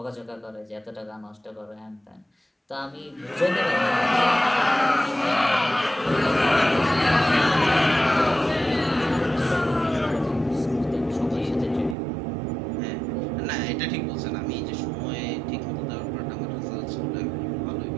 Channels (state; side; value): drops out; left; at 12.0 s